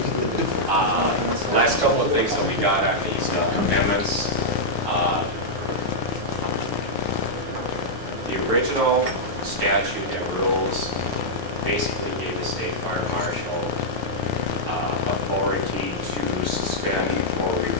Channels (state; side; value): late; left; 9.5 ms